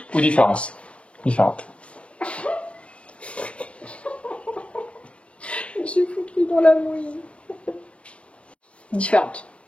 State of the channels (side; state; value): right; late; 0.061 ms